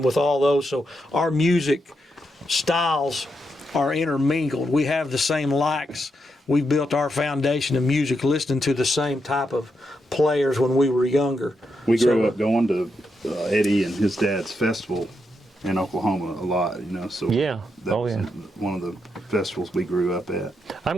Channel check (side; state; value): both; normal; correlation 0.83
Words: with all those. So our music styles are intermingled. We have the same likes. We built our foundation of music listening to the same type of players when we were younger. We grew up going to Eddie and his dad's festival in Oklahoma a lot, so that was one of the festivals we grew up at. I'm